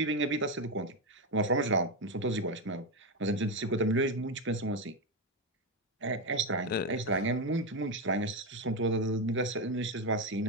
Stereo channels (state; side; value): normal; both; correlation 0.09